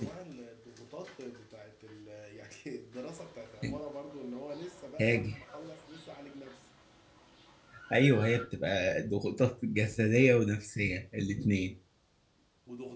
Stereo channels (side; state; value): both; identical; correlation 1.00